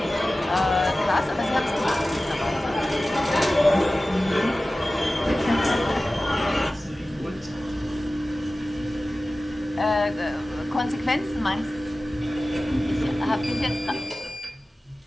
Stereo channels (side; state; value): both; normal; correlation 0.96